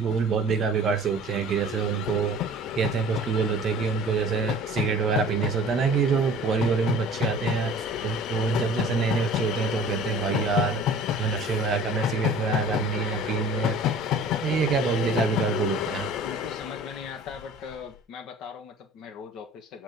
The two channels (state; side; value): normal; both; correlation 0.46